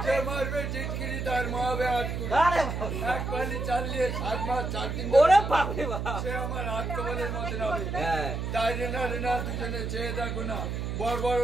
যে মারবে চিটকিরি তার মা হবে আটকুড়ি। এক পালি চালিয়ে 7 মাস 4 দিন ওরে বাপরে বাপ, সে আমার হাত কবলের মধ্যে হবে। তাই রেনা রেনা দুজনে চেয়ে থাকো না, বড় বড়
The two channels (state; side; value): noise; right; hum, 3 dB below the sound